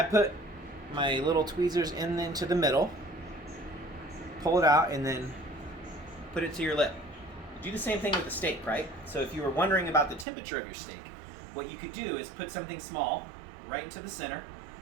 put my little tweezers into the middle, pull it out, and then put it to your lip. Do the same thing with the steak, right? So if you were wondering about the temperature of your steak, what you could do is put something small right into the center,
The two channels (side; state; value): left; drops out; at 10.2 s